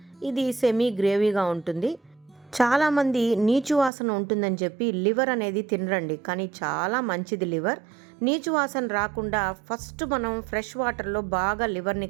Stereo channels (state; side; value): drops out; left; at 3.9 s